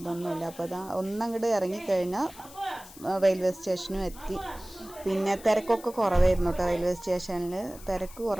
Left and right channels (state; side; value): noise; left; hiss, 18 dB below the sound